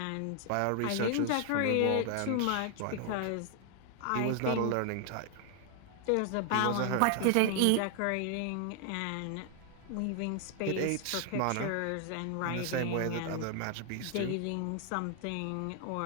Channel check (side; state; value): both; different; correlation 0.00